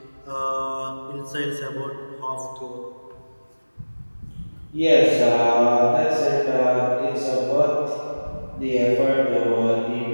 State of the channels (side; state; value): both; inverted; correlation -1.00